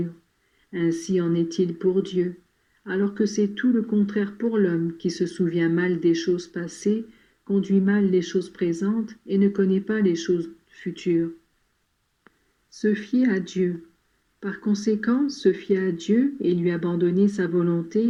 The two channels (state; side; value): identical; both; correlation 1.00